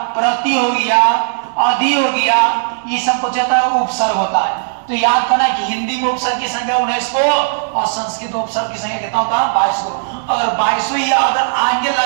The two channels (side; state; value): left; silent; digital silence